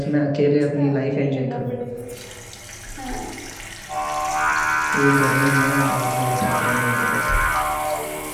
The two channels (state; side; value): identical; both; correlation 1.00